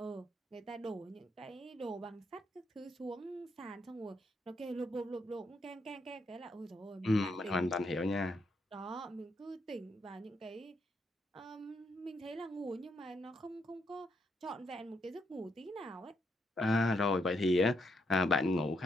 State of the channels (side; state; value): both; normal; correlation 0.78